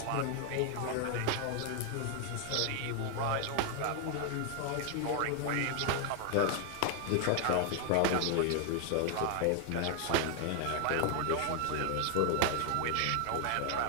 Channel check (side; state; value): both; different; correlation 0.00